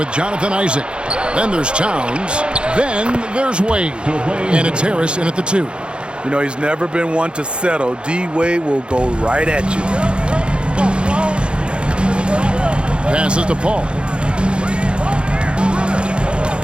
Jonathan Isaac. Then there's Towns. Then there's Wade. And it's Harris in at the 2. You know, he's never been one to settle. D-Wade will go right at you. Passes to Paul.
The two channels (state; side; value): late; left; 0.055 ms